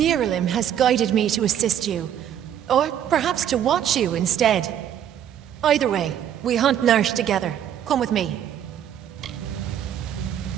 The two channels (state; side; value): quieter; left; 9.9 dB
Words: has guided me to assist you. Or perhaps to watch you instead. Either way, we hunt Narsh together. Come with me.